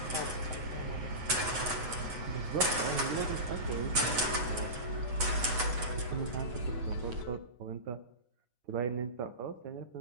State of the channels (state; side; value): late; left; 8.0 ms